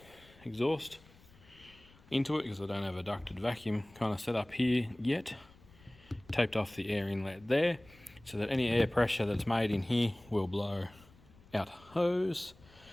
exhaust into it because I don't have a ducted vacuum kind of set up here yet. Taped off the air inlet there so that any air pressure that's made in here will blow out hose,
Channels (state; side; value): noise; left; rumble, 25 dB below the sound